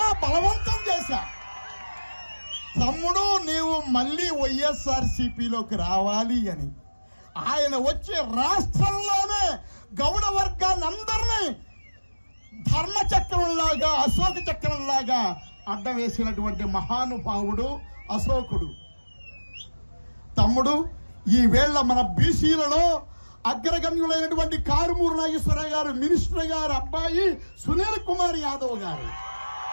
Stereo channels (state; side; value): inverted; both; correlation -1.00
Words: బలవంతం చేశా. తమ్ముడు, నీవు మళ్ళీ వైఎస్ఆర్సీపీలోకి రావాలి అని. ఆయన వచ్చి రాష్ట్రంలోనే గౌడ వర్గాన్ని అందరినీ ధర్మచక్రంలాగా, అశోక చక్రంలాగా అడ్డం వేసినటువంటి మహానుభావుడు అశోకుడు. తమ్ముడు, ఈ వేళ మన బీసీలలో అగ్రగణ్యులైనటువంటి కారుమూరి నాగేశ్వరరావు గారు, మినిస్టర్ గారు అబ్బాయి సునీల్ కుమార్ యాదవ్ గారు,